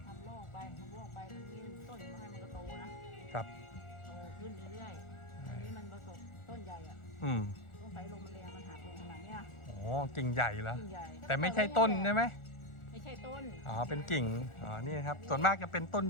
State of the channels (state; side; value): late; right; 1.4 ms